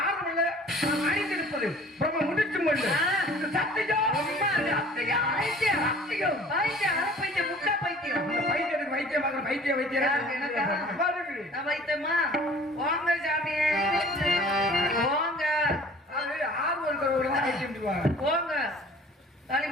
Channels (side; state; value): both; normal; correlation 0.48